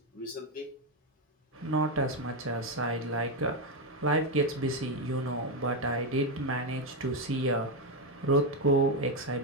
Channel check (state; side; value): normal; both; correlation 0.07